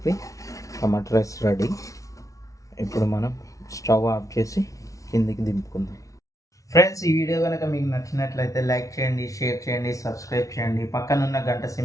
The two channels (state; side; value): late; right; 0.16 ms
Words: టమాటా రైస్ రెడీ. ఇప్పుడు మనం స్టవ్ ఆఫ్ చేసి కిందికి దింపుకుందాం. ఫ్రెండ్స్, ఈ వీడియో కనుక మీకు నచ్చినట్లయితే లైక్ చేయండి, షేర్ చేయండి, సబ్స్క్రైబ్ చేయండి. పక్కనున్న గంట